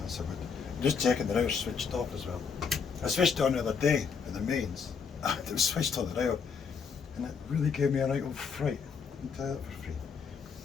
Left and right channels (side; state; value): right; quieter; 6.0 dB